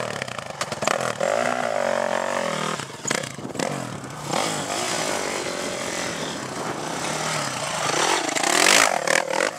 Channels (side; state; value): both; identical; correlation 1.00